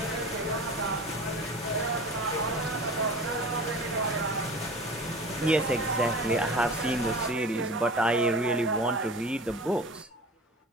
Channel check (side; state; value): both; normal; correlation 0.37